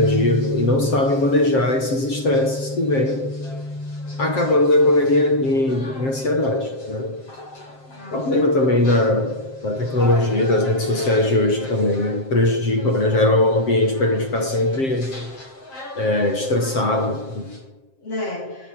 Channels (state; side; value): late; right; 7.6 ms